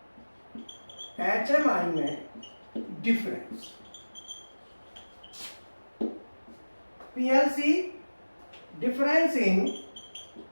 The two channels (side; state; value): both; inverted; correlation -1.00